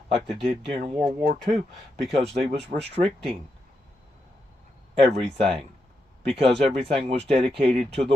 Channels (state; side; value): normal; both; correlation 0.84